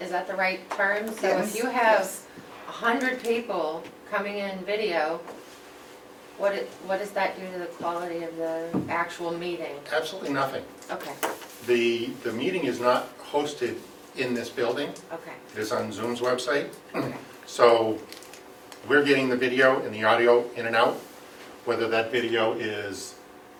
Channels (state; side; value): identical; both; correlation 1.00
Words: Is that the right term? So Yes, if you have yes. 100 people coming in video, what does that do to the quality of the actual meeting? Absolutely nothing. Okay, The meeting is not hosted in this building. okay, It is on Zoom's website. okay. So we're getting the video and the audio in and out, whether that video is